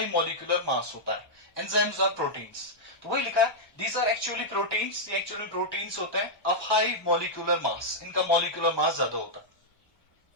molecular mass होता है. Enzymes are proteins. तो वही लिखा है, these are actually proteins. ये actually proteins होते हैं of high molecular mass. इनका molecular mass ज्यादा होता है.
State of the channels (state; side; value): late; right; 1.3 ms